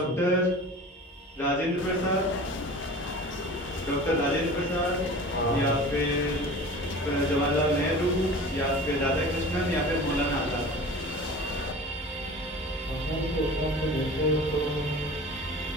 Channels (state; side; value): normal; both; correlation 0.38